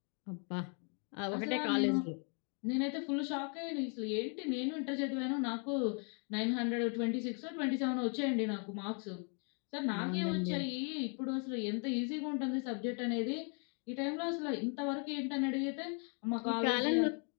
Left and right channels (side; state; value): right; quieter; 39.8 dB